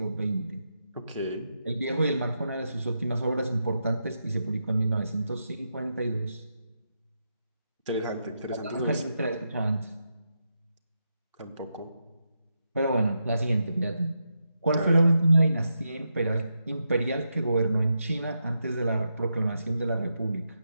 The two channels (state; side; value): inverted; both; correlation -0.85